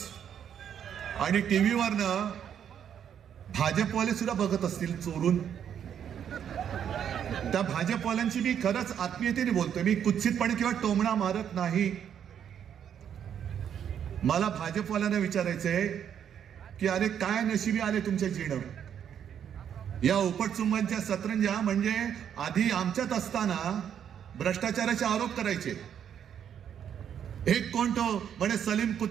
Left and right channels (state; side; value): quieter; left; 8.9 dB